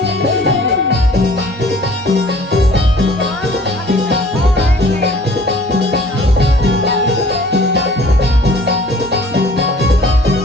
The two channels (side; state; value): both; normal; correlation 0.51